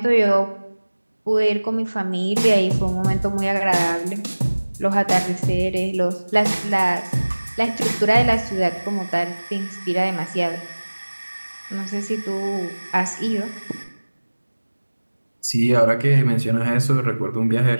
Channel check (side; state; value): both; inverted; correlation -1.00